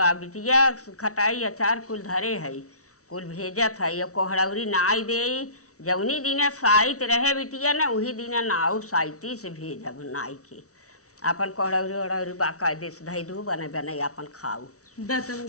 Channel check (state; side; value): late; right; 0.65 ms